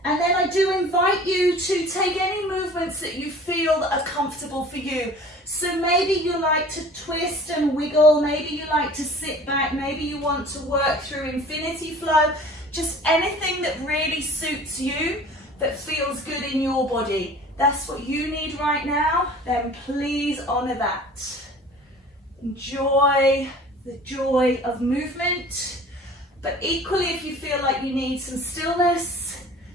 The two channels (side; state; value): both; normal; correlation 0.45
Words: And then I do invite you to take any movements that you feel that are comfortable for you. So maybe you like to twist and wiggle, maybe you like to sit back, maybe you want to work through infinity flow. Just anything that really suits you, that feels good in your body. That's what you need right now, then please honor that. Enjoy the joy of movement, but equally if you feel like you need some stillness,